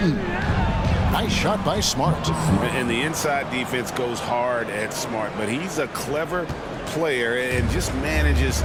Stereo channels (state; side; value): identical; both; correlation 1.00